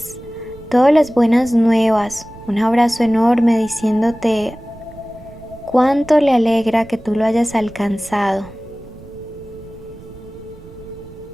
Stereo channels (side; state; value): right; noise; rumble, 19 dB below the sound